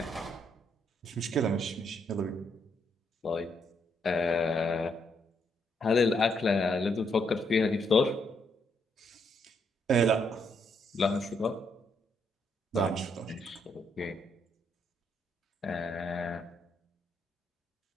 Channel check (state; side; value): normal; both; correlation 0.75